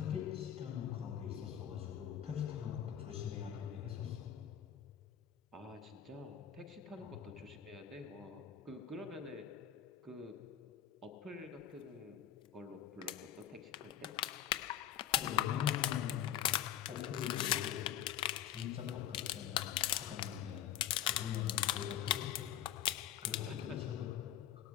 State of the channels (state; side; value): quieter; right; 10.8 dB